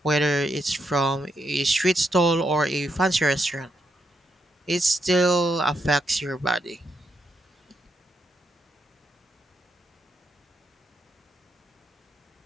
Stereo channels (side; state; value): both; normal; correlation 0.80